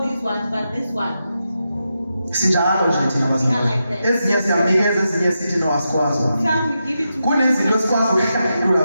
these ones, but this one. Sinjalo nje thina bazalwane. Ezinye siyanikeza, ezinye sithi no asikwazi. Some we give it to. Kunezinto esikwazi ukuhlangulula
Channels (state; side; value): inverted; both; correlation -0.87